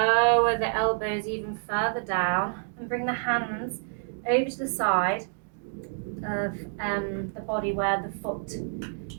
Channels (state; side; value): silent; left; digital silence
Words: the elbows even further down and bring the hands over to the side of the body where the foot